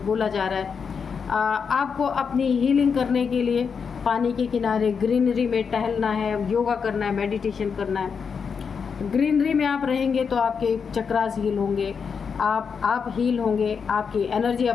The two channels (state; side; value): quieter; right; 6.1 dB